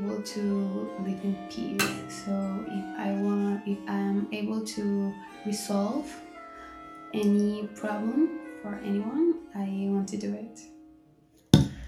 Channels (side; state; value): both; identical; correlation 1.00